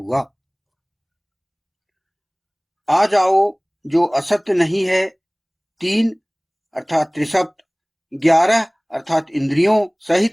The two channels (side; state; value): both; identical; correlation 1.00